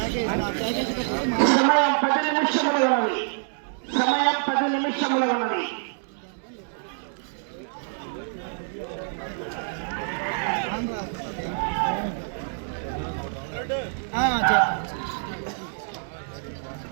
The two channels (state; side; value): silent; left; digital silence